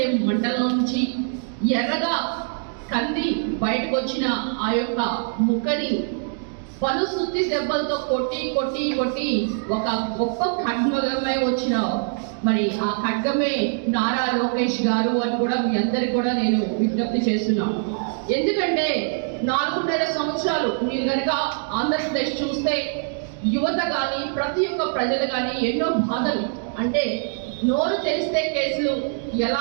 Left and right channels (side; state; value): left; silent; 63 dB below the other